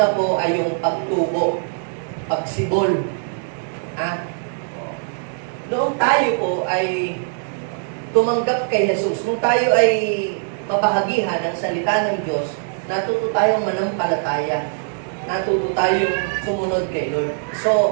po ay yung pagtubo, pagsibol. Noong tayo po ay tumanggap kay Jesus, nung tayo ay mabahagihan ng salita ng Diyos, natuto tayong manampalataya. Natuto tayong sumunod kay Lord.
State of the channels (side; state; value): left; silent; digital silence